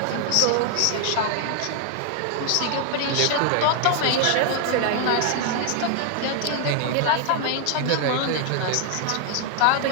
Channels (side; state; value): both; different; correlation 0.01